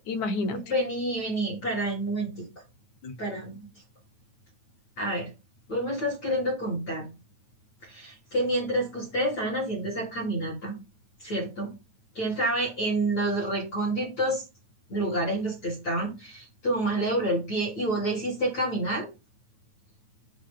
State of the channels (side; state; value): right; late; 9.2 ms